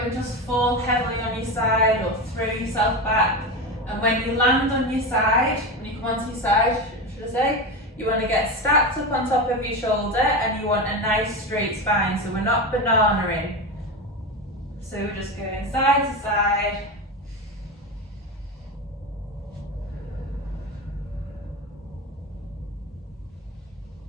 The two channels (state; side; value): normal; both; correlation 0.20